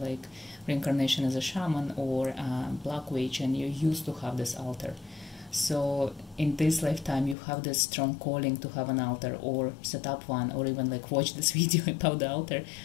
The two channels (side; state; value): right; drops out; at 7.4 s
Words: reincarnation as a shaman or a black witch, and you used to have this altar. So in this lifetime you have this strong calling to have an altar, or set up one, or even like watch this video about the altar.